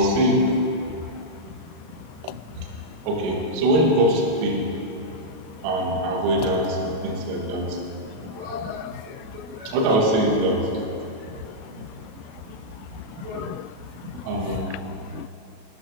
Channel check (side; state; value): left; late; 37 ms